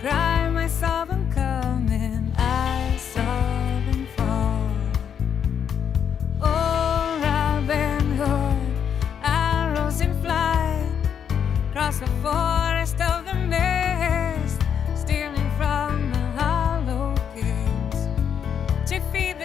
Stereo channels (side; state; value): right; quieter; 8.1 dB